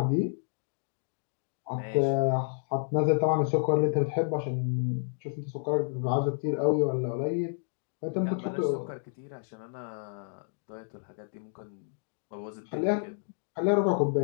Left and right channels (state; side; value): silent; right; digital silence